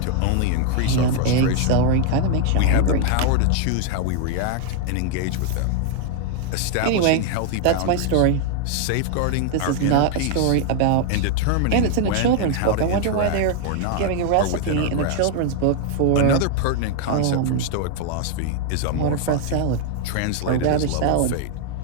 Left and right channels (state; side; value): different; both; correlation 0.00